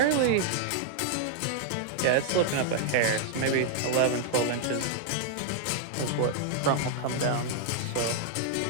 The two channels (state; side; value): different; both; correlation -0.01